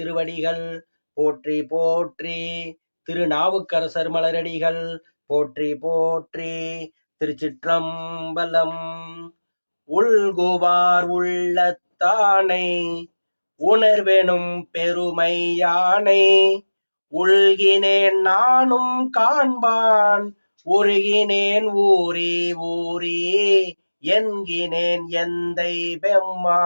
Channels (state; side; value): inverted; both; correlation -1.00